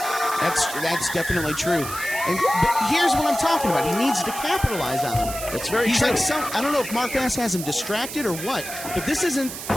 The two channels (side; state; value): right; noise; hiss, 9 dB below the sound